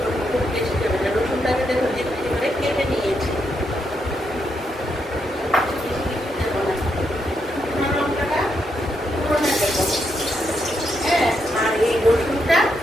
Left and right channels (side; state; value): both; normal; correlation 0.80